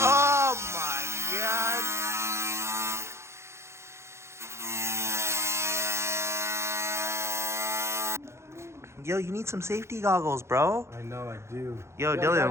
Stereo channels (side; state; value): left; late; 0.13 ms